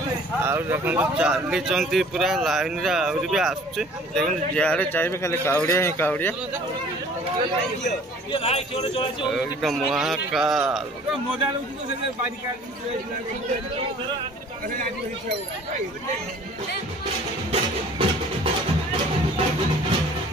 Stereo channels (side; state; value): both; normal; correlation 0.50